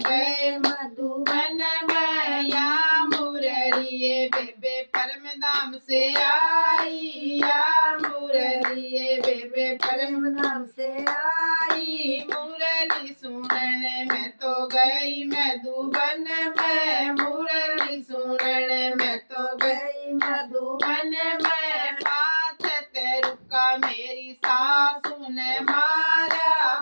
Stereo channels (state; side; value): inverted; both; correlation -1.00